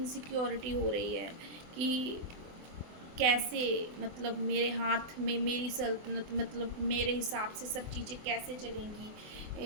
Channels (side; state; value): left; late; 24 ms